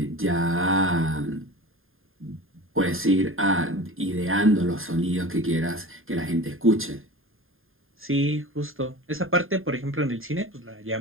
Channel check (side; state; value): left; late; 0.60 ms